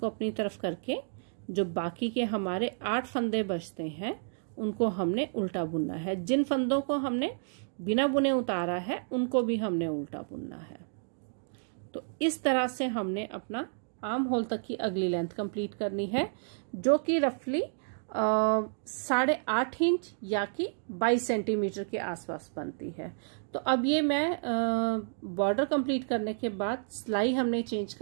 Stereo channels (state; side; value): silent; left; digital silence